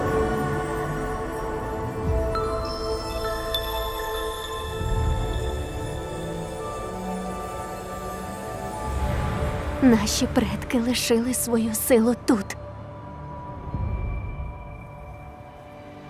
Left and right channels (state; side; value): identical; both; correlation 1.00